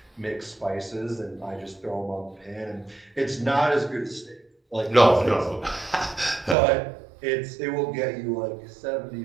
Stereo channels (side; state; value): left; drops out; at 6.6 s